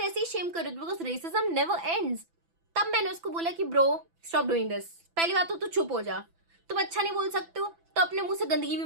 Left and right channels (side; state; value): left; late; 6.0 ms